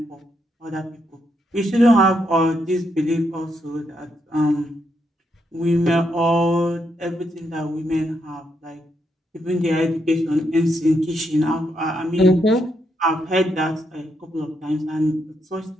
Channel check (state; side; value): normal; both; correlation 0.79